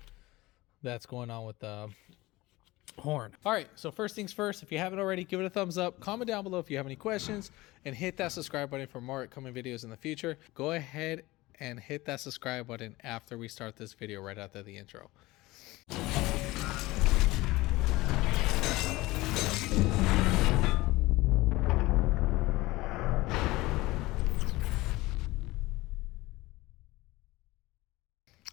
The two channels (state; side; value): quieter; right; 19.8 dB